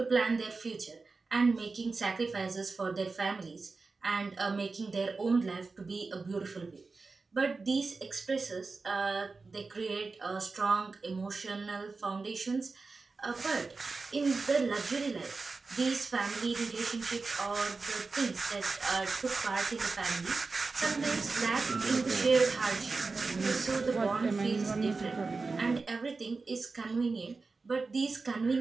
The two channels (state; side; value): quieter; left; 4.1 dB